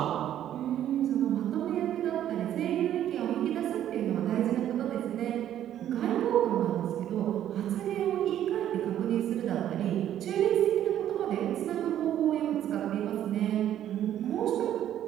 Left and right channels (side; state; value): left; quieter; 11.2 dB